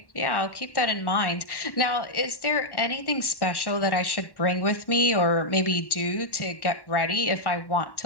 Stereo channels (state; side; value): late; right; 1.1 ms